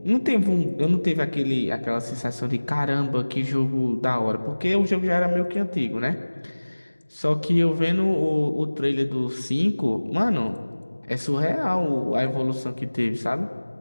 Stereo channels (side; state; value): both; inverted; correlation -1.00